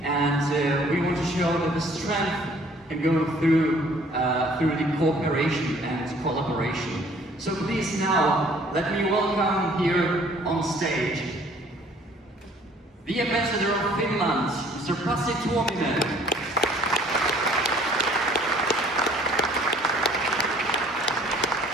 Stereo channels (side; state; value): both; normal; correlation 0.56